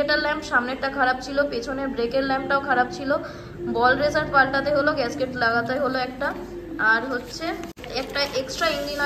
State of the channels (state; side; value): identical; both; correlation 1.00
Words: ল্যাম্প সামনেরটা খারাপ ছিল, পেছনের ব্রেকের ল্যাম্পটাও খারাপ ছিল। বল রেসার পাল্টাতে হলো, গ্যাসকেট লাগাতে হলো একটা, আর হচ্ছে একটা এক্সট্রা ইঞ্জিন